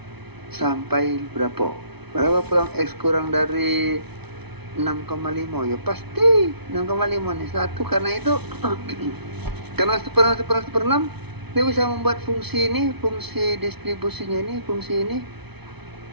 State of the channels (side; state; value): left; late; 0.99 ms